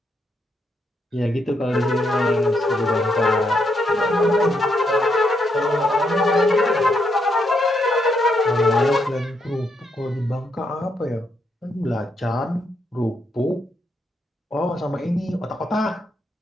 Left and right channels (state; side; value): normal; both; correlation 0.78